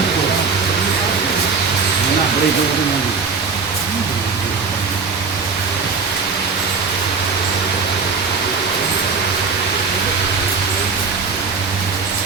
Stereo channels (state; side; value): quieter; left; 5.0 dB